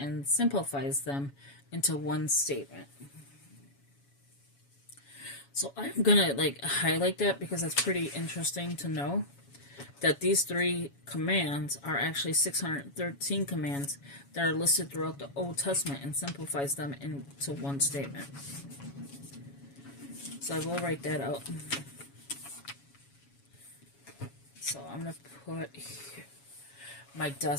simplifies them into one statement. So I'm gonna like highlight that because it's pretty interesting to know that these 3 commands are actually 613 commands that are listed throughout the Old Testament and simplifies them into one statement. So I will write that out. So I'm going to put here. My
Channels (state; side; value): late; right; 7.2 ms